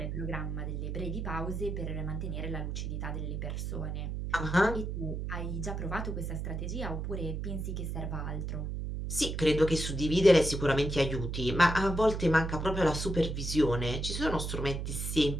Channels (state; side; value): noise; right; hum, 3 dB below the sound